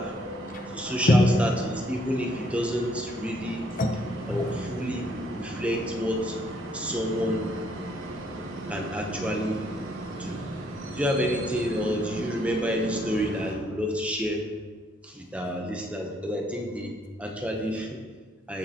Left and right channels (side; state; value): both; normal; correlation 0.69